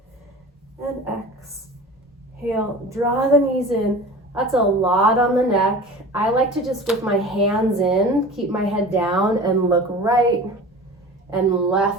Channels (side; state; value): both; normal; correlation 0.37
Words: and exhale. Draw the knees in. That's a lot on the neck. I like to just, with my hands in, keep my head down and look right and